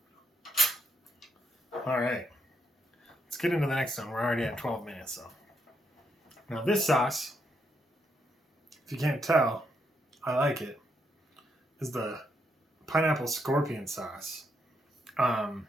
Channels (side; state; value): both; normal; correlation 0.78